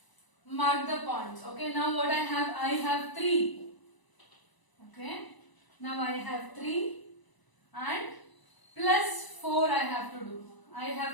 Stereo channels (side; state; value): right; late; 1.0 ms